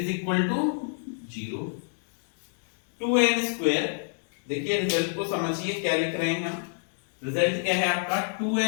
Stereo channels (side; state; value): right; silent; digital silence